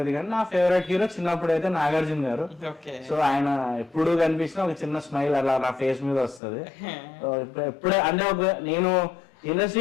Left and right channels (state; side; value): drops out; right; at 6.4 s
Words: కానీ నా ఫేవరెట్ హీరో చిన్నప్పుడు అయితే నాగార్జున గారు. సో ఆయన ఎప్పుడు కనిపించినా ఒక చిన్న స్మైల్ అలా నా ఫేస్ మీద వస్తుంది. ఎప్పుడే అంటే నేను